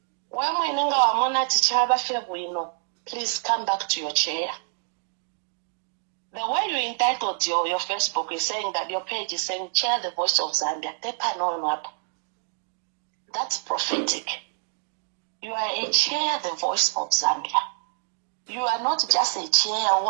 When we know our mona tichaba febwino, please come back to your chair. The way you entitled your Facebook is saying that your page is saying chair the voice of Zambia. That's prophetic. You are a chair the voice of Zambia. You are not just a chair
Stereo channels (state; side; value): silent; left; digital silence